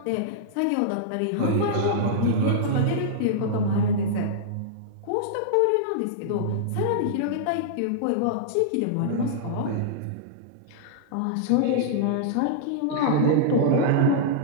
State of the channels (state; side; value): different; both; correlation -0.02